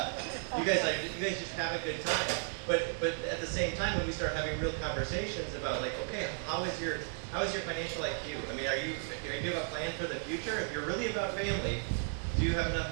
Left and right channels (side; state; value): left; silent; 55 dB below the other